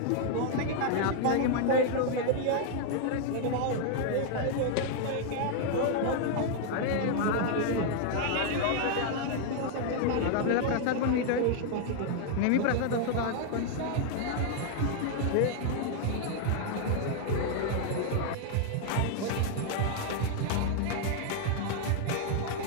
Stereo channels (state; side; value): different; both; correlation 0.00